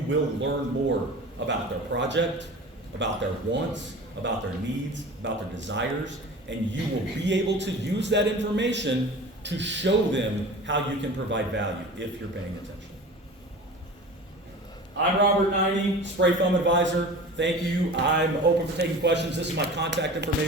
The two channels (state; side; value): normal; both; correlation 0.37